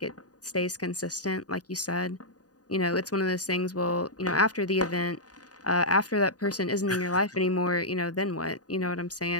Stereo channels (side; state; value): right; late; 0.68 ms